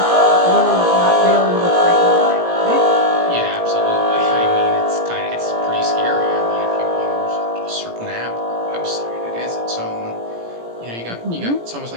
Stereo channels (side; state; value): left; late; 17 ms